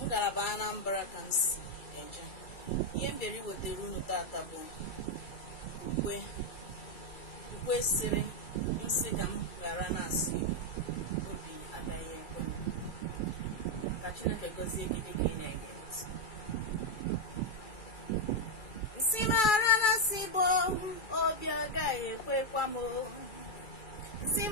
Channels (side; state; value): right; late; 2.3 ms